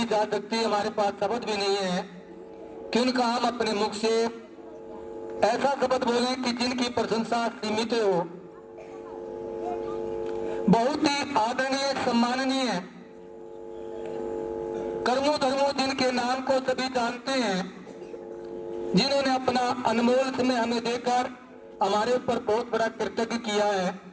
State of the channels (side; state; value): both; identical; correlation 1.00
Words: जा सकती, हमारे पास शब्द भी नहीं है कि उनका हम अपने मुख से ऐसा शब्द बोलें कि जिनकी प्रशंसा सीमित हो। बहुत ही आदरणीय सम्माननीय कर्मों धर्मों जिनके नाम को सभी जानते हैं, जिन्होंने अपना अनमोल समय हमें देकर हमारे ऊपर बहुत बड़ा कृतज्ञ किया है।